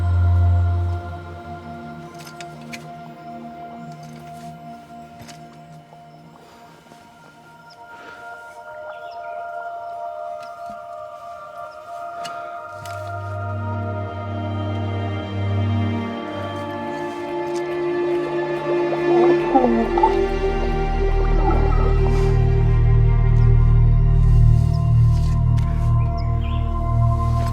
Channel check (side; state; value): both; identical; correlation 1.00